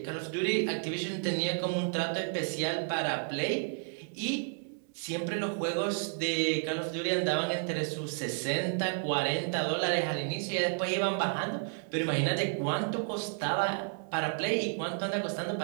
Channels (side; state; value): left; silent; 57 dB below the other